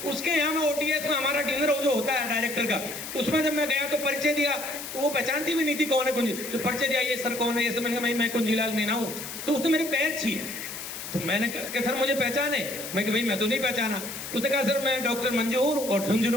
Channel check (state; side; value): noise; left; hiss, 9 dB below the sound